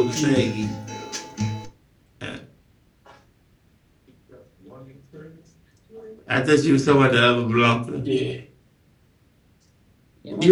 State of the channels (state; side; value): identical; both; correlation 1.00